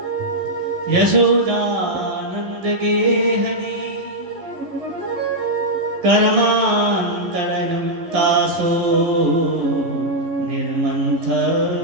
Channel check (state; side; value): late; left; 11 ms